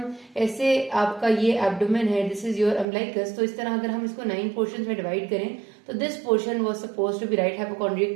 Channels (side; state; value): left; drops out; at 2.9 s